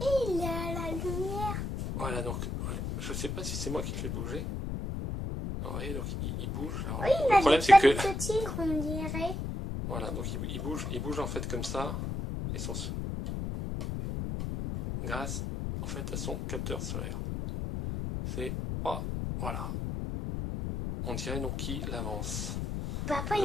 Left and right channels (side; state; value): left; noise; rumble, 3 dB below the sound